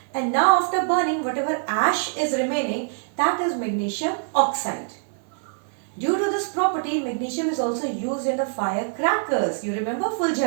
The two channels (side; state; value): left; silent; 61 dB below the other